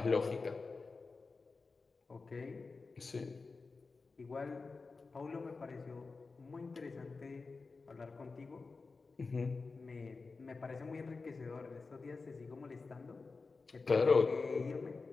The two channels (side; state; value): right; quieter; 4.2 dB